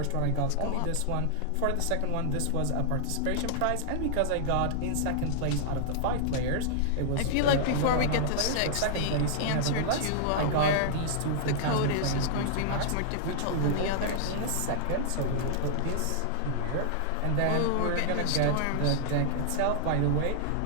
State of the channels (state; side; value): different; both; correlation -0.01